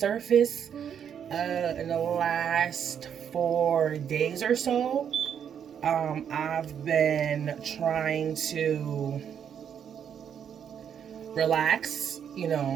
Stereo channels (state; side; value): quieter; left; 8.3 dB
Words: in the last 4 days or so. I've been trying to relax,